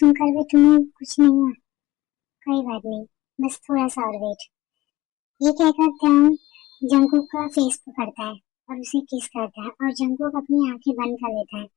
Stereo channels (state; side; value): quieter; right; 17.8 dB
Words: भी तुम्हें कुछ नहीं हुआ। कोई बात नहीं, बस थोड़ा सा और वेट। ये कहकर त्यान जंगकुक का फेस पकड़ता है और उसे किस करता है और जंगकुक अपनी आंखें बंद कर लेता है।